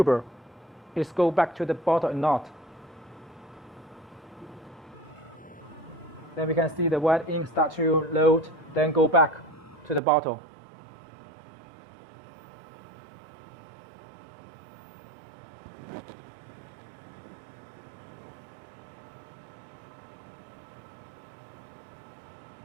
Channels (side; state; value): left; drops out; at 10.0 s